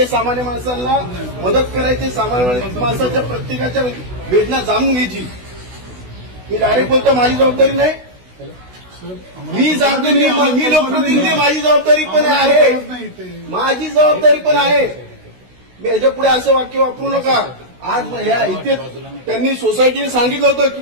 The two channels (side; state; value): left; late; 16 ms